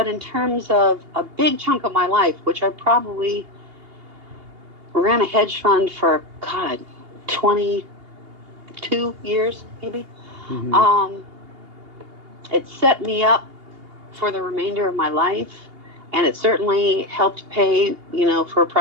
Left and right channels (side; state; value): left; late; 2.8 ms